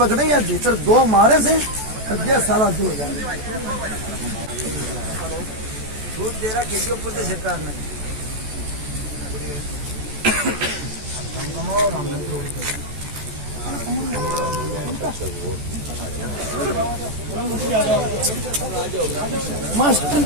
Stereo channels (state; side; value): late; left; 14 ms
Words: या भीतर 2 मारे से अध्या सारा दो हो जाए। दूध दे रहा खेती ऊपर से सरकार ने